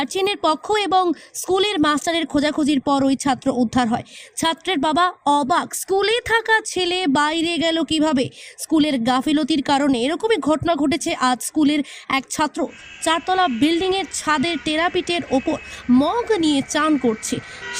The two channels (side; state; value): both; identical; correlation 1.00